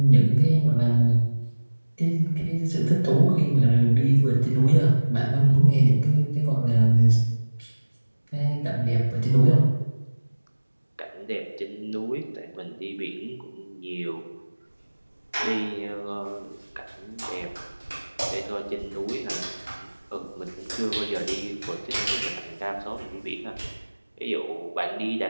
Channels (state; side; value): inverted; both; correlation -1.00